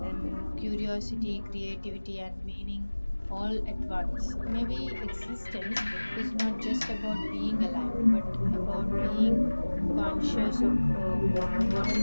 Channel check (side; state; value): both; inverted; correlation -1.00